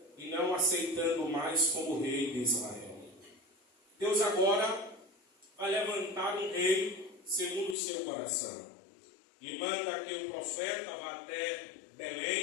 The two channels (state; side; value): drops out; right; at 7.8 s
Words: e não aceitando mais como rei de Israel. Deus agora vai levantar um rei segundo o seu coração e manda que o profeta vá até